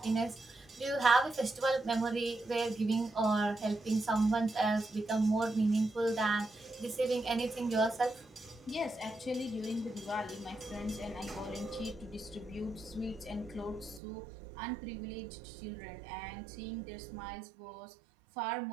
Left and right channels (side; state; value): left; drops out; at 14.0 s